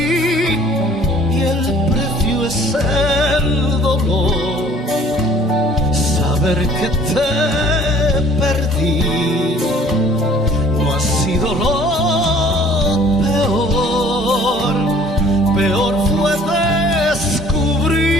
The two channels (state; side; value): normal; both; correlation 0.54